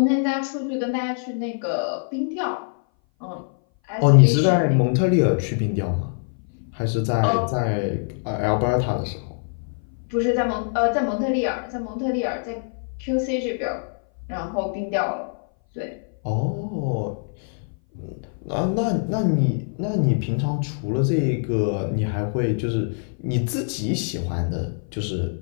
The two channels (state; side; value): silent; right; 58 dB below the other